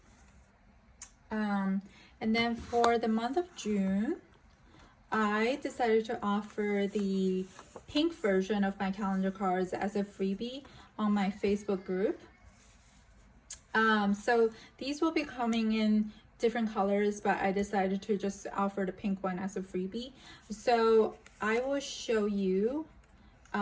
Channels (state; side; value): identical; both; correlation 1.00